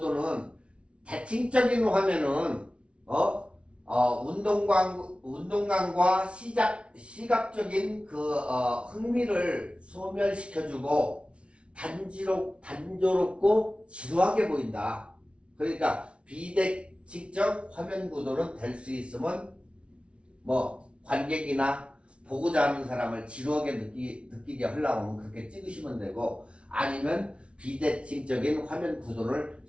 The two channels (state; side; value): late; left; 0.060 ms